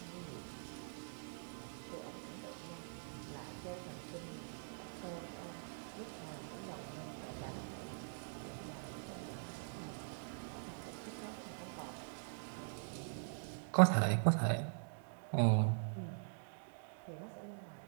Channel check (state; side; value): silent; left; digital silence